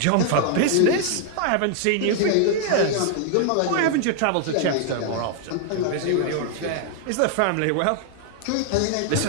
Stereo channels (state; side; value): different; both; correlation 0.00